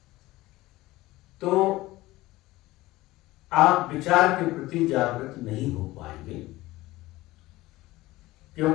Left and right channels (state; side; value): quieter; right; 18.4 dB